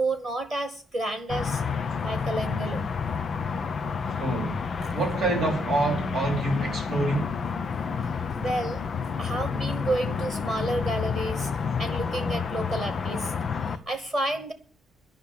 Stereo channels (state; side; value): normal; both; correlation 0.75